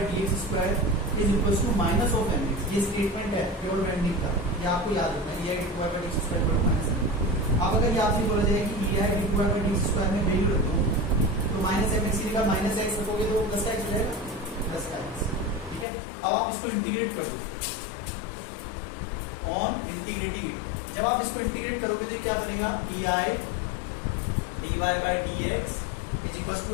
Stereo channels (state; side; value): drops out; right; at 15.9 s